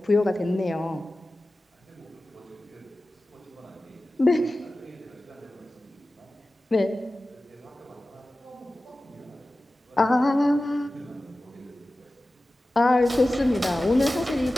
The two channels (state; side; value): normal; both; correlation 0.95